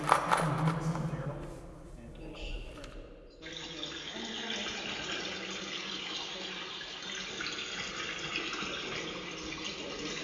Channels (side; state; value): both; identical; correlation 1.00